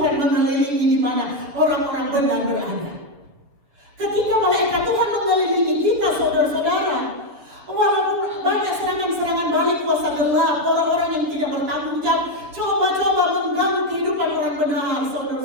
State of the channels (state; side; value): late; left; 7.0 ms